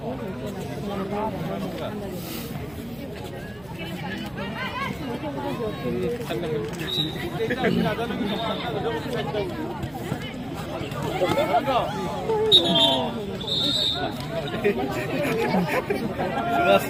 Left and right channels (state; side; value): noise; right; hum, 24 dB below the sound